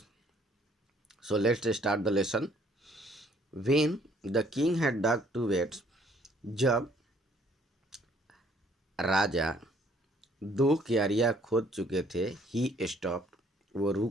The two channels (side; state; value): both; normal; correlation 0.63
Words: So let's start the lesson. When the king had dug 2 beds, जब राजा 2 क्यारियां खोद चुके थे, he stopped, वो